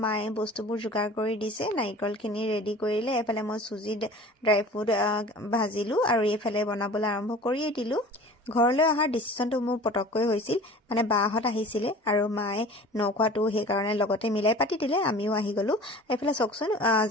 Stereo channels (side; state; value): both; normal; correlation 0.42